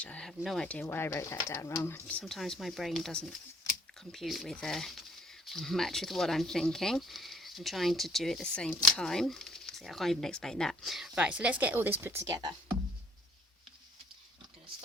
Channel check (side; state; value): both; normal; correlation 0.60